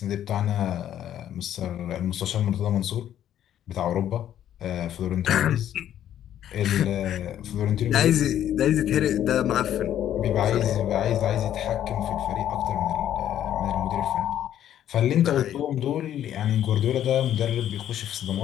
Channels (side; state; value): right; quieter; 11.0 dB